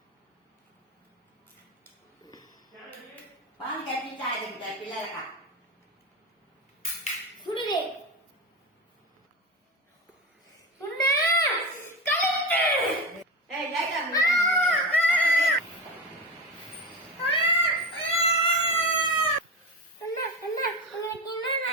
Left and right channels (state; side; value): normal; both; correlation 0.21